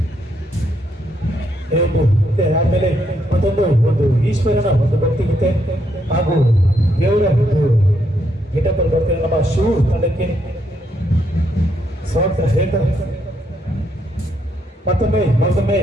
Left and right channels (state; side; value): normal; both; correlation 0.76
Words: ಆಮೇಲೆ ಒಂದು ಈಶ್ವರನ ಒಂದು ಭಕ್ತಿಗೀತೆ ಹಾಗೂ ದೇವರ ಒಂದು ಗೆಟಪಲ್ಲಿ ಬರ್ತಿರೋ ನಮ್ಮ ಶಿವ ತಂಡಕ್ಕೆ ಸ್ವಾಗತ ಹೇಳ್ತಾರೆ. ಮತ್ತೊಮ್ಮೆ